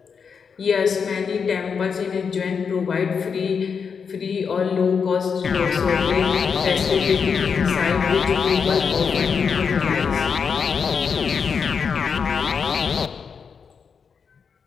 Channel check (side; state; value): right; quieter; 6.2 dB